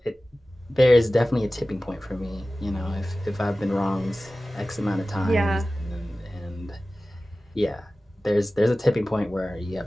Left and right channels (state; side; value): normal; both; correlation 0.96